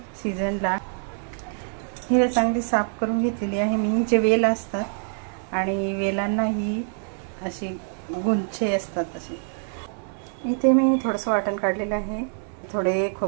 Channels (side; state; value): left; silent; 55 dB below the other